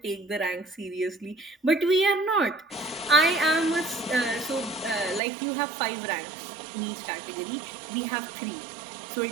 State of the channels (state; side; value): drops out; left; at 5.2 s